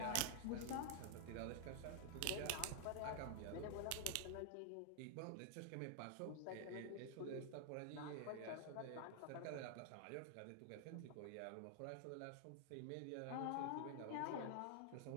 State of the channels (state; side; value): different; both; correlation 0.00